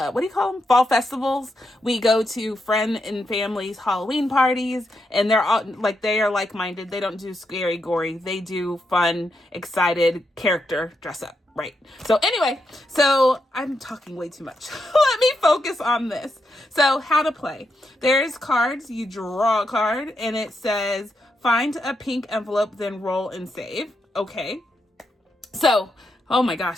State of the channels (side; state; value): both; normal; correlation 0.83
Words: do you call them? Fall festivals. We go to friend and family's Halloween parties, and they're all they are like-minded. They don't do scary, gory. They do fun, excited character dress up. Right. So anyway, so I'm talking way too much. Let me focus on this. So how to play. There's cards. You draw a card and it says, find a pink envelope, then roll and save. Okay. So, oh my gosh,